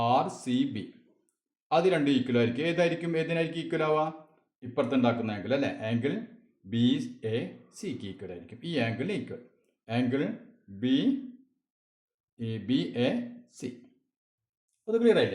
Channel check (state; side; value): identical; both; correlation 1.00